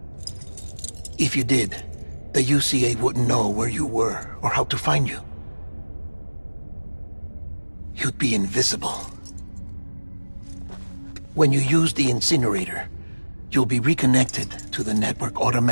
If you did, the UCA wouldn't know where you were or how to find you. You'd be invisible. When you use the incinerator, you'll be reconnected to the network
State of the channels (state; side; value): inverted; both; correlation -1.00